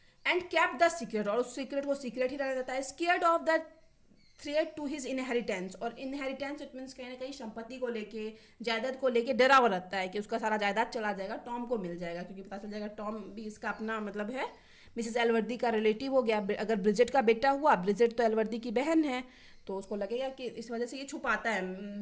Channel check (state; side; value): identical; both; correlation 1.00